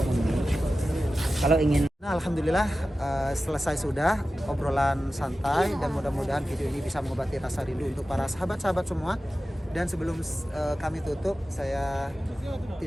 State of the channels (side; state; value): both; normal; correlation 0.94